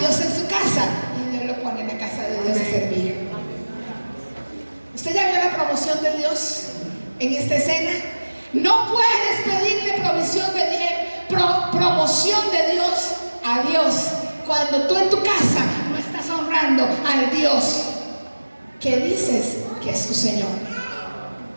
en su casa y Dios lo pone en la casa de Dios a servir. ¿Usted ya vio la promoción de Dios en esta escena? No puedes pedirle promoción de Dios a Dios cuando tú en tu casa no estás honrando al Dios que dices que es tu Señor.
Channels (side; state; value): both; inverted; correlation -1.00